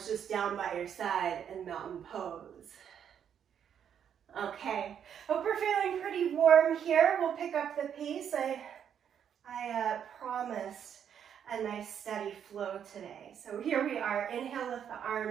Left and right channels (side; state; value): left; quieter; 8.6 dB